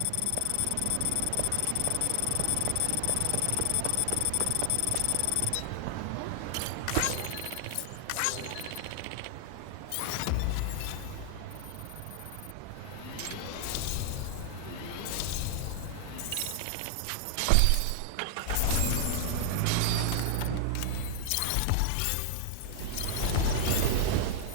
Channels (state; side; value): different; both; correlation 0.00